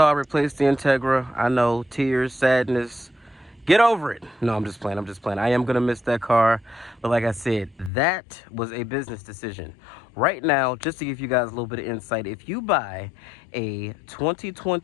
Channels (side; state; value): right; drops out; at 7.9 s